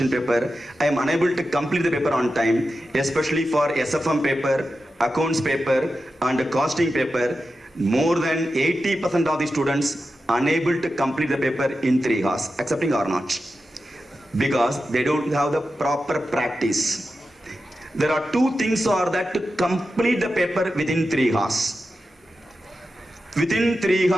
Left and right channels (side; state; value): both; normal; correlation 0.91